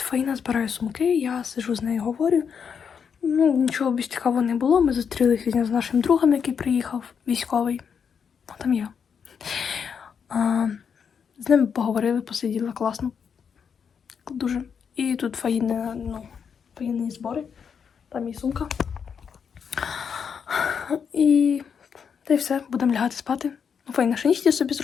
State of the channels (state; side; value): quieter; right; 6.9 dB